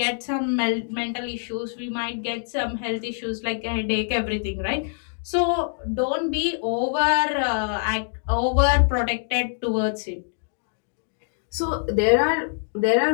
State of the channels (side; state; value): right; silent; digital silence